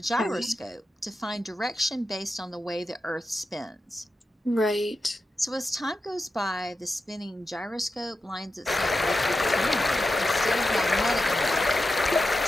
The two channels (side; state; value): both; normal; correlation 0.90